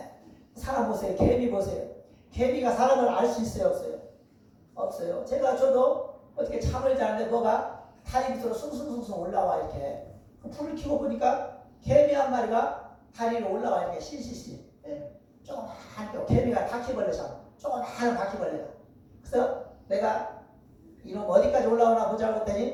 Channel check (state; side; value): identical; both; correlation 1.00